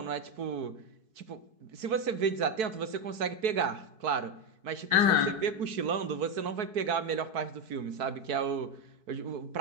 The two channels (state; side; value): late; left; 4.6 ms